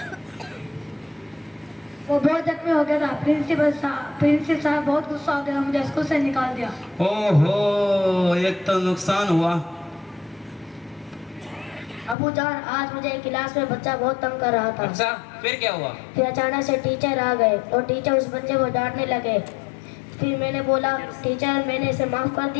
وہ بہت زخمی ہو گیا تھا. پرنسپل صاحب بہت غصہ ہو گیا، مجھے اسکول سے نکال دیا. او ہو، ایک تو نقصان ہوا. ابو جان آج مجھے کلاس میں بچہ بہت تنگ کر رہا تھا. اچھا پھر کیا ہوا؟ پھر اچانک سے ٹیچر آ گئے اور ٹیچر اس بچے کو ڈانٹنے لگے. پھر میں نے بولا ٹیچر میں نے اسے معاف کر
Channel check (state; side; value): drops out; right; at 12.2 s